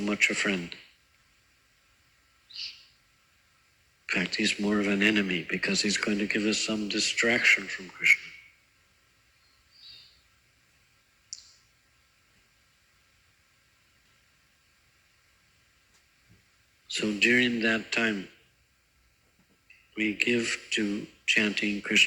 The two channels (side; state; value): both; identical; correlation 1.00